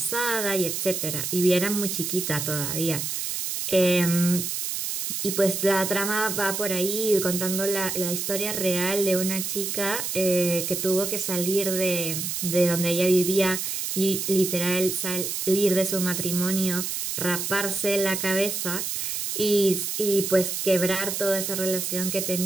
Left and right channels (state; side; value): noise; right; hiss, 3 dB below the sound